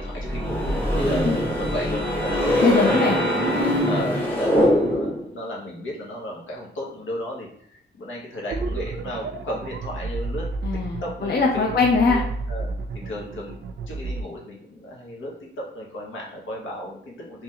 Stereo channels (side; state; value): both; normal; correlation 0.60